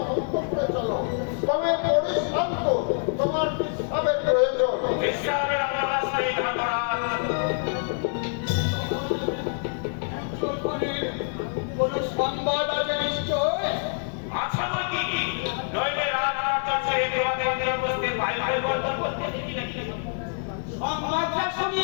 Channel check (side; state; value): right; silent; 61 dB below the other